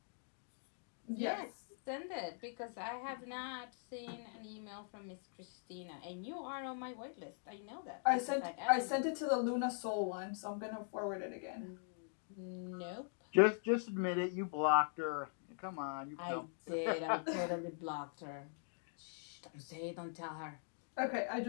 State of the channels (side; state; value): right; silent; digital silence